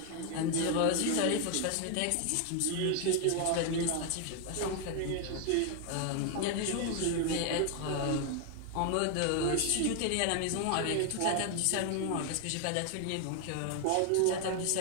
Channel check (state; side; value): different; both; correlation 0.00